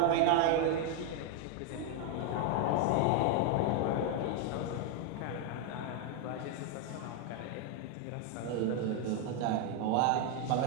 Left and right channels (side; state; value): both; different; correlation 0.01